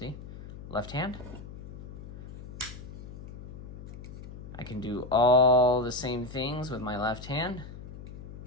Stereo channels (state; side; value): noise; left; hum, 12 dB below the sound